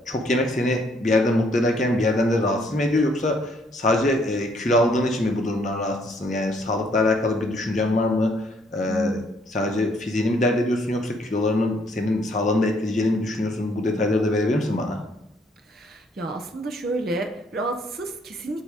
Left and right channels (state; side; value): normal; both; correlation 0.67